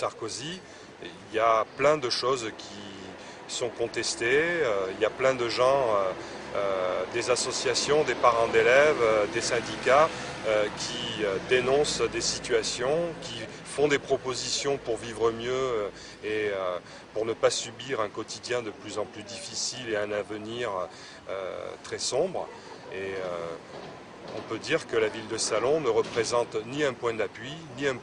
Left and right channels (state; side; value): identical; both; correlation 1.00